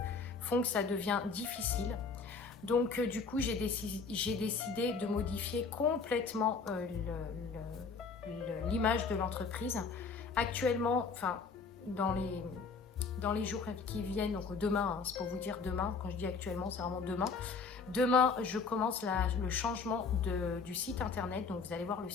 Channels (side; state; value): right; quieter; 4.9 dB